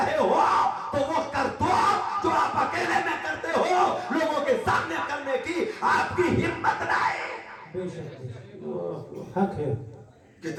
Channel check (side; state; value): both; identical; correlation 1.00